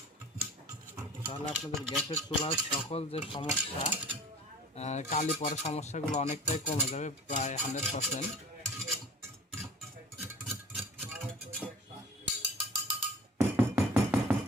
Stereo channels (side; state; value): both; normal; correlation 0.44